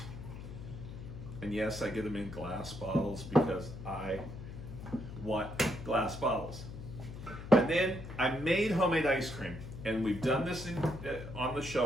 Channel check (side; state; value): left; noise; hum, 10 dB below the sound